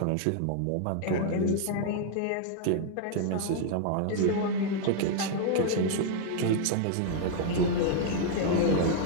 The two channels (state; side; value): different; both; correlation -0.01